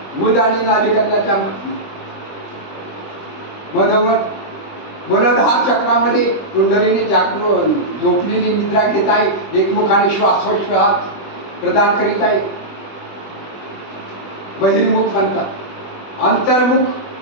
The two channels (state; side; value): late; right; 20 ms